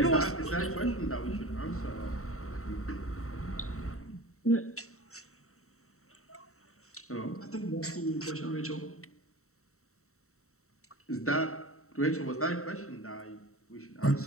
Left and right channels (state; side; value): late; right; 0.64 ms